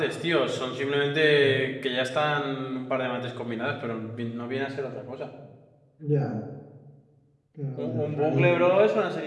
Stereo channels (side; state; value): both; identical; correlation 1.00